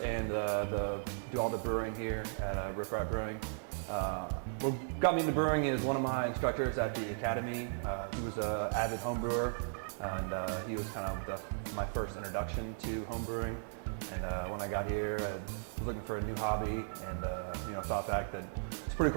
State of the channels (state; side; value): silent; left; digital silence